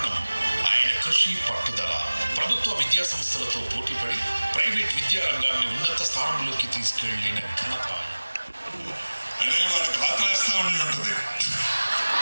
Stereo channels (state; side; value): inverted; both; correlation -1.00